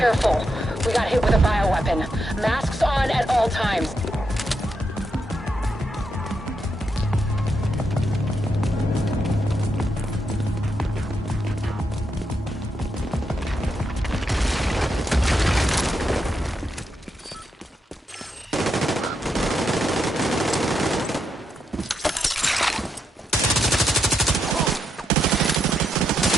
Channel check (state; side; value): normal; both; correlation 0.82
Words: We got hit with a bioweapon. Masks on at all times.